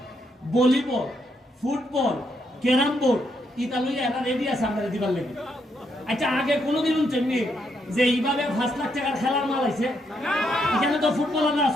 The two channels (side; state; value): both; normal; correlation 0.77